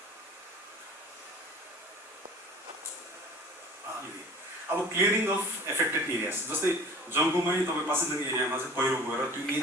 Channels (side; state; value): both; normal; correlation 0.43